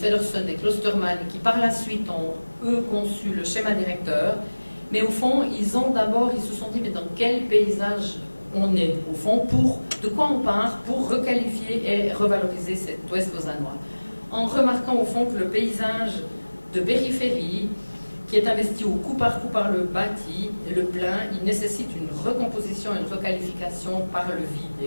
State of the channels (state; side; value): inverted; both; correlation -1.00